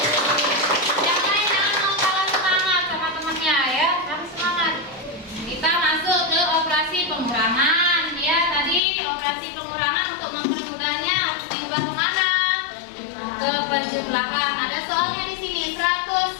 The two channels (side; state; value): right; drops out; at 8.8 s